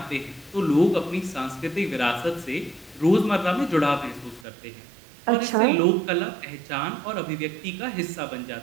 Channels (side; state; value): left; drops out; at 4.5 s